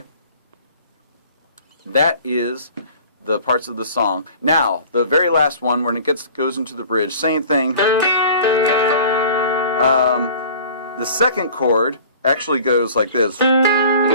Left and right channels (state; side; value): inverted; both; correlation -0.45